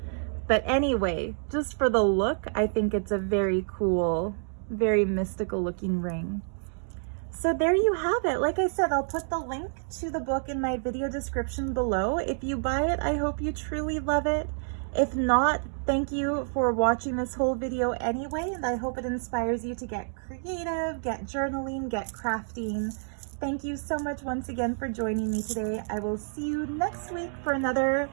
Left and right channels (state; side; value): silent; left; digital silence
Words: But anyway, just for the look, I think it's a very cool, very mystical looking ring. So there you have it. Like I said, I'll put the link to the book in my video description below. If you buy it, I hope you truly love it. If not, thank you for watching this whole video anyway, and I hope it inspires you to get creative, get journaling, get crafting. Thank you so much once again for joining me today. I will see you next week for another